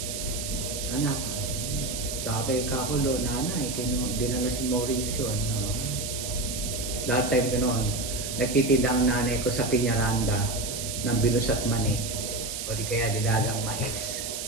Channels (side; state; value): right; noise; hiss, 5 dB below the sound